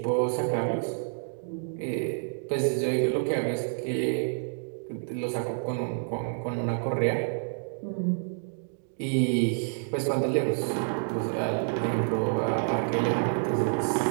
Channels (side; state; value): left; silent; digital silence